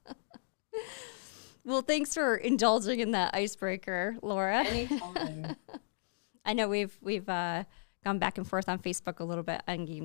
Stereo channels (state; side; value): silent; right; digital silence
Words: Well, thanks for indulging in that icebreaker, Laura. Anytime. I know we've gone back and forth on Facebook a little bit on